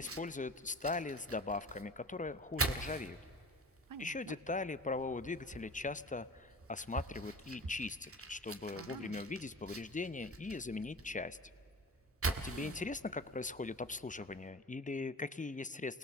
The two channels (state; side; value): normal; both; correlation 0.37